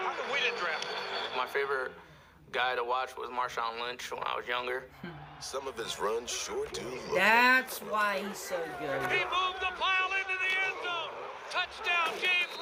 come we didn't draft him? My favorite guy to watch was Marshawn Lynch when I was younger. Some of his runs sure do look That's why he's so good. He moved the pile into the end zone. Touchdown, James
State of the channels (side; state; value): both; identical; correlation 1.00